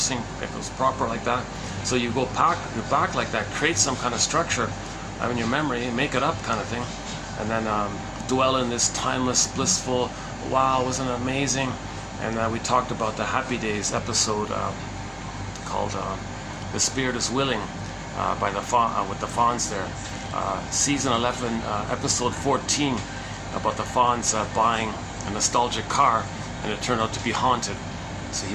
if it was proper like that. So you go back like that, create some kind of structure in your memory, make it up kind of thing, and then dwell in this timeless, blissful, wow, wasn't it amazing? And we talked about the Happy Days episode called The Spirit is Willing by with the Fawns there. Season 11, episode 14, about the Fawns buying a nostalgic car, and it turned out to be haunted. So he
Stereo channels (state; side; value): identical; both; correlation 1.00